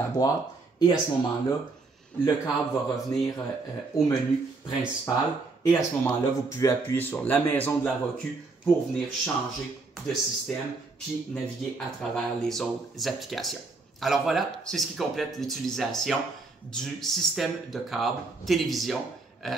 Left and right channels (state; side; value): quieter; left; 3.8 dB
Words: boîte et à ce moment-là, le câble va revenir au menu principal et à ce moment-là, vous pouvez appuyer sur la maison de la Roku pour venir changer de système puis naviguer à travers les autres applications. Alors voilà, c'est ce qui complète l'utilisation du système de câble télévision